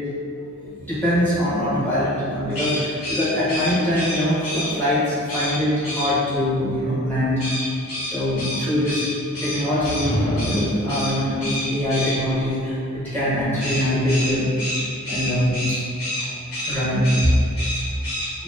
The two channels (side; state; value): both; normal; correlation 0.50